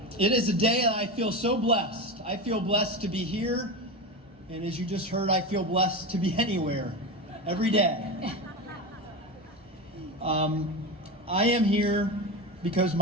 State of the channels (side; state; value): both; normal; correlation 0.20